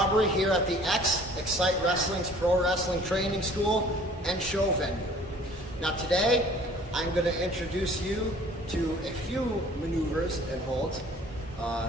here at the XCITE Wrestling's Pro Wrestling Training School and Show Venue. Now today, I'm going to introduce you to a few maneuvers and holds.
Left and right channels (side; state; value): both; normal; correlation 0.52